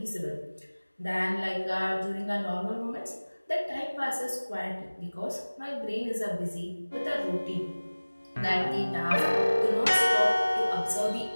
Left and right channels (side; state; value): both; inverted; correlation -1.00